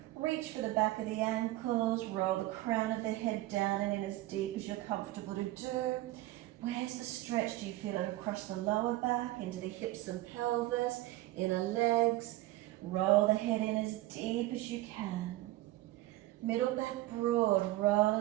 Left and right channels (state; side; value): quieter; left; 17.2 dB